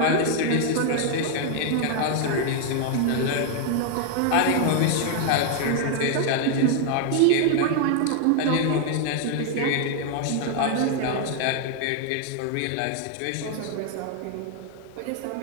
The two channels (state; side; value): different; both; correlation 0.00